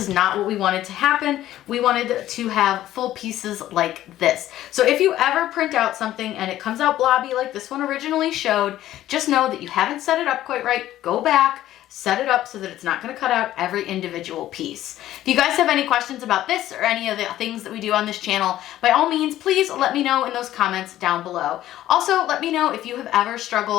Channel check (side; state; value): right; quieter; 13.5 dB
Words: not what we wanted to happen. We wanted to have full pieces like this. So if you ever print out something and it comes out blobby like this one originally showed, just know that you haven't set it up quite right. Go back, set it up so that it's not going to cut out every individual piece. If you guys have any questions about this or any of the things that we do on this channel, by all means, please let me know in those comments down below. Also, let me know if you have ever